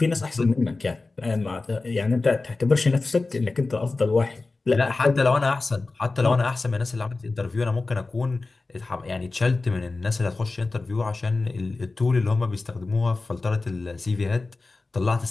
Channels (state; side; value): quieter; right; 3.5 dB